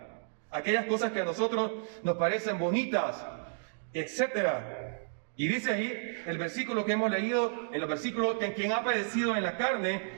aquellas cosas que a nosotros nos parecen bonitas, etcétera. Y dice ahí el versículo que hemos leído, en los versículos, que quien ha padecido en la carne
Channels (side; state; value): left; silent; digital silence